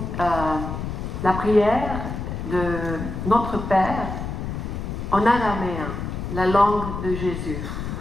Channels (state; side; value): noise; left; rumble, 5 dB below the sound